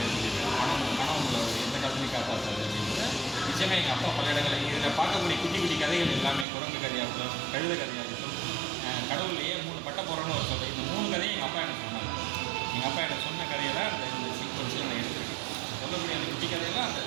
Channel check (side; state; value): left; drops out; at 6.5 s